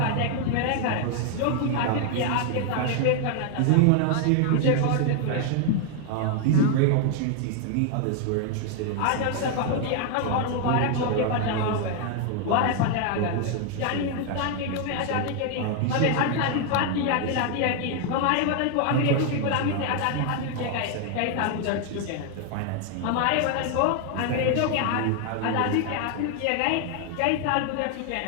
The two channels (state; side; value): different; both; correlation 0.01